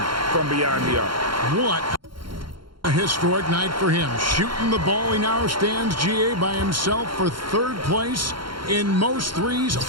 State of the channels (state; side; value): late; left; 0.73 ms